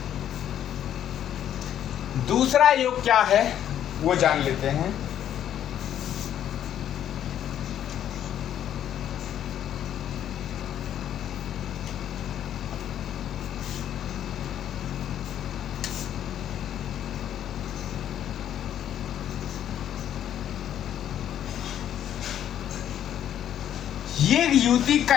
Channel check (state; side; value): quieter; right; 10.5 dB